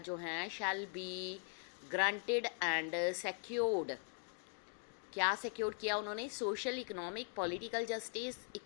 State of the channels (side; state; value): right; silent; 50 dB below the other